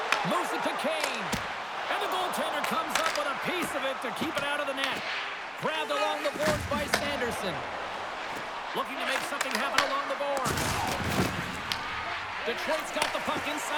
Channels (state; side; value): identical; both; correlation 1.00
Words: Moves it to Kane. And the goaltender comes up with a piece of it to keep it out of the net. Grabbed along the boards by Sanderson. Looking to make something happen along the boards. Detroit's got the puck